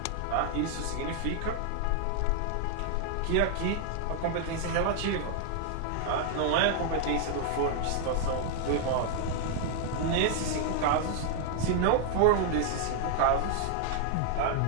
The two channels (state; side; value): different; both; correlation 0.00